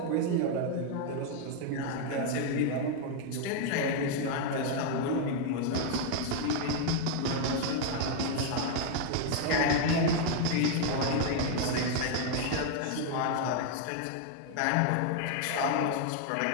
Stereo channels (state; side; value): different; both; correlation 0.00